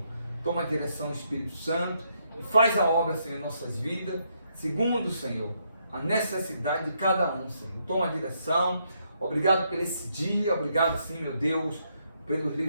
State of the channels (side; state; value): both; inverted; correlation -0.76